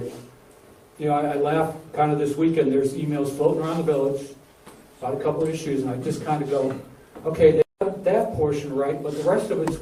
You know, I laugh kind of this weekend, there's emails floating around the village about a couple of issues, and I just kind of go, okay, they got that portion right, but the rest of it's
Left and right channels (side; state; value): both; identical; correlation 1.00